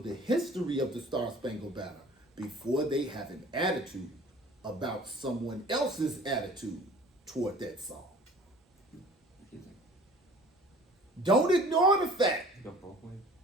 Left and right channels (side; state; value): both; normal; correlation 0.48